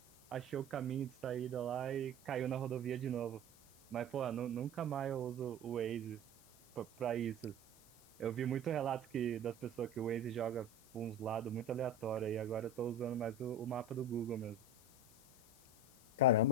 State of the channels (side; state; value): left; noise; hiss, 23 dB below the sound